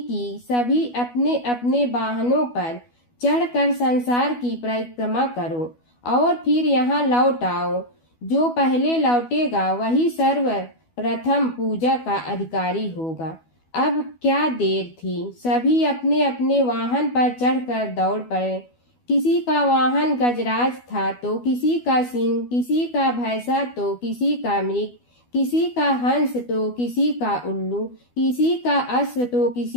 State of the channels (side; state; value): right; late; 12 ms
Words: कि सभी अपने अपने वाहनों पर चढ़कर संसार की परिक्रमा करो और फिर यहाँ लौट आओ। जो पहले लौटेगा वही सर्वप्रथम पूजा का अधिकारी होगा। अब क्या देर थी, सभी अपने अपने वाहन पर चढ़कर दौड़ पड़े। किसी का वाहन गजराज था तो किसी का सिंह, किसी का भैंसा तो किसी का मृग, किसी का हंस तो किसी का उल्लू, किसी का अश्व तो